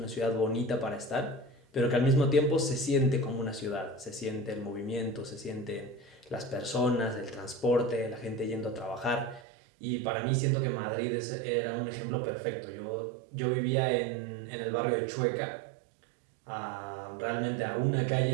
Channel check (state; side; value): drops out; left; at 9.5 s